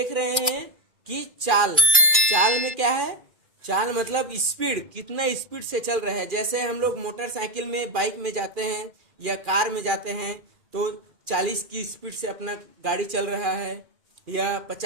रहे हैं कि चाल। चाल में क्या है? चाल मतलब स्पीड, कितना स्पीड से चल रहा है। जैसे हम लोग मोटरसाइकिल में, बाइक में जाते हैं या कार में जाते हैं तो 40 की स्पीड से अपना गाड़ी चल रहा है या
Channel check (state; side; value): late; left; 2.4 ms